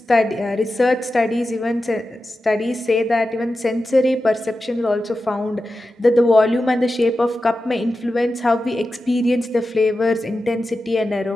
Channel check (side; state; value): both; normal; correlation 0.92